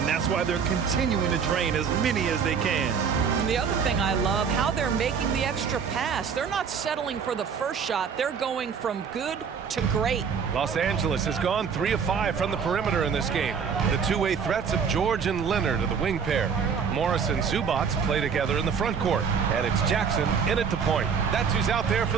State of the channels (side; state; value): left; quieter; 6.5 dB